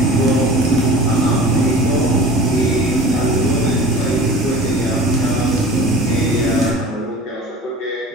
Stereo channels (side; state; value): both; normal; correlation 0.39